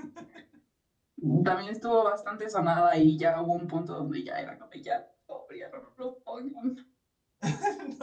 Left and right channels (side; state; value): both; identical; correlation 1.00